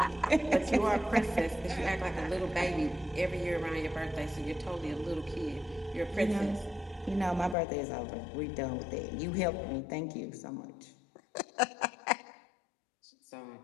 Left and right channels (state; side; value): drops out; right; at 7.6 s